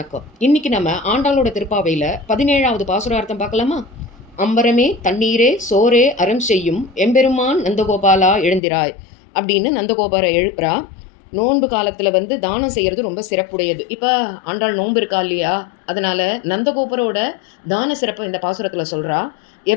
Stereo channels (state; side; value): drops out; right; at 8.6 s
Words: இன்னைக்கு நம்ம ஆண்டாளோட திருப்பாவையில 17வது பாசுரார்த்தம் பார்க்கலாமா? அம்பரமே தண்ணீரே சோரே அறம் செய்யும் எம்பெருமான் நந்தகோபாலா எழுந்திராய் அப்படின்னு நந்தகோபாரை எழுப்புறா. நோன்பு காலத்துல தானம் செய்யறது ரொம்ப சிறப்புடையது. இப்ப ஆண்டாள் நோன்பு இருக்கா இல்லையா, அதனால நந்தகோபரோட தான சிறப்பை இந்த பாசுரத்துல சொல்றா.